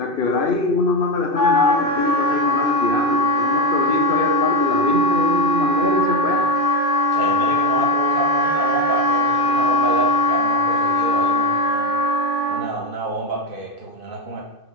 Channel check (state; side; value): late; left; 2.6 ms